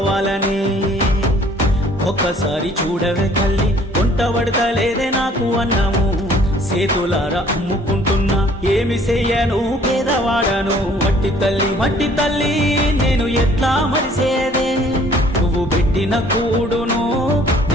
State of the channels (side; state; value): both; normal; correlation 0.57